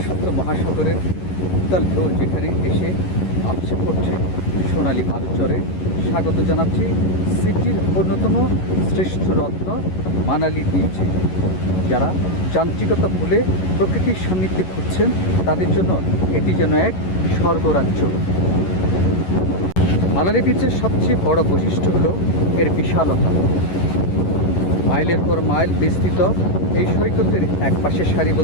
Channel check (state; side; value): late; right; 11 ms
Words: মহাসাগরের উত্তাল ঢেউ যেখানে এসে আপসে পড়ছে সোনালী বালুচরে স্বাগত জানাচ্ছি সিটির অন্যতম শ্রেষ্ঠ রত্ন মানালি বিচে। যারা যান্ত্রিকতা ভুলে প্রকৃতির সান্নিধ্যে খুঁজছেন তাদের জন্য এটি যেন এক স্বর্গরাজ্য। মানালি বিচের সবচেয়ে বড় বৈশিষ্ট্য হলো এর বিশালতা। মাইলের পর মাইল বিস্তৃত এই সৈকতের এক পাশে